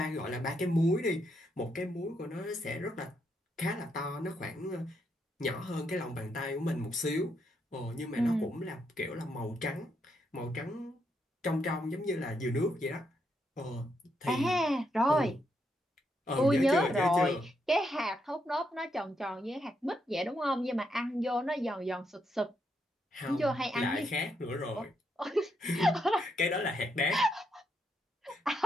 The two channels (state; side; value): normal; both; correlation 0.79